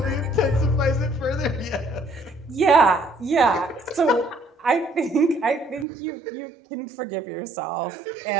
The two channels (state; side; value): drops out; left; at 5.9 s